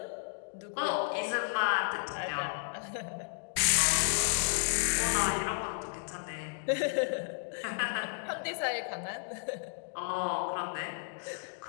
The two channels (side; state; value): right; silent; digital silence